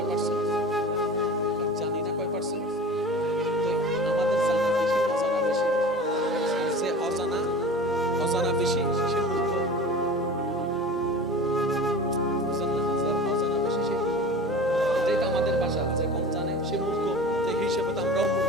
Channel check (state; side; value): normal; both; correlation 0.36